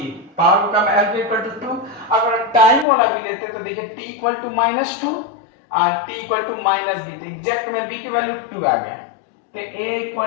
पावर को कम l इक्वल टू 2। अगर टाइम वाला भी लेते हैं तो देखिए t इक्वल टू -2 और t इक्वल टू -b। तो एग्जैक्ट में b की वैल्यू 2 आ गया। तो a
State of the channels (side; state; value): right; drops out; at 2.9 s